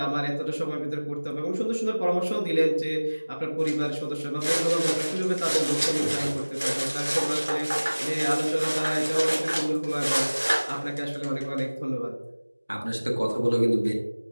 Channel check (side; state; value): both; inverted; correlation -1.00